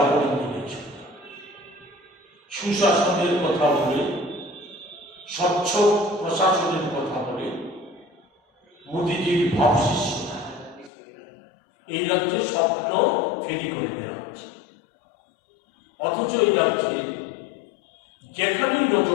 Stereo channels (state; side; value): drops out; right; at 10.9 s